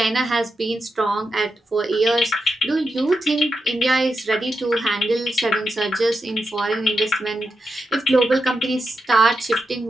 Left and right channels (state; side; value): normal; both; correlation 0.87